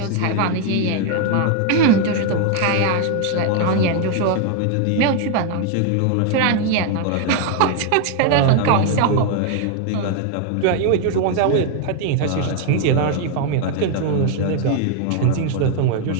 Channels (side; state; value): both; different; correlation 0.00